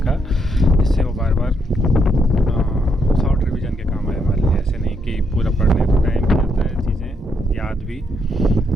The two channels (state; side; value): normal; both; correlation 0.77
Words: जिससे वो बार बार शॉर्ट रिवीजन के काम आए हमारे लिए। ऐसे नहीं कि पूरा पढ़ने तो टाइम भी जाता है, चीज़ें याद भी